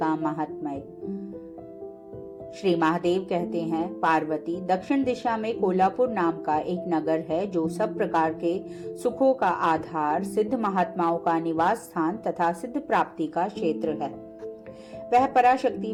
महात्म्य। श्री महादेव कहते हैं, पार्वती, दक्षिण दिशा में कोल्हापुर नाम का एक नगर है जो सब प्रकार के सुखों का आधार, सिद्ध महात्माओं का निवास स्थान तथा सिद्ध प्राप्ति का क्षेत्र है। वह पराशक्ति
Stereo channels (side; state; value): both; identical; correlation 1.00